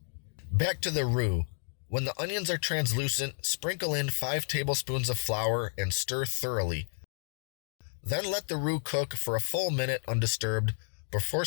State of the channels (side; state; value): right; silent; digital silence